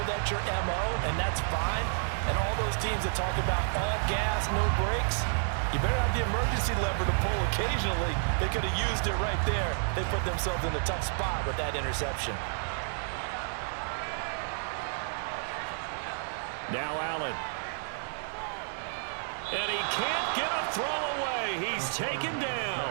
that's your MO, and that's fine. And all those teams that talk about all gas, no brakes, you better have the emergency lever to pull occasionally. They could have used it right there. They put themselves in a tough spot with that interception. Now Allen. And he can't get a throw away. He's taken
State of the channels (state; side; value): silent; left; 57 dB below the other